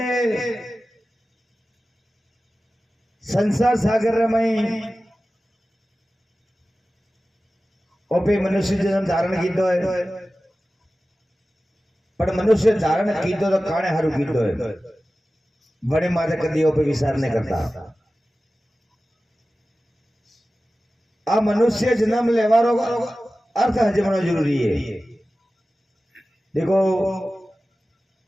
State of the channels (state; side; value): normal; both; correlation 0.95